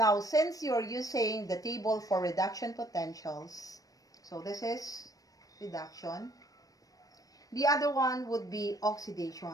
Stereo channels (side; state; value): right; late; 0.17 ms